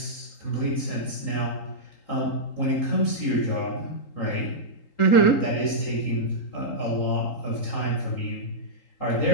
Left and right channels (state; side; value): late; right; 3.8 ms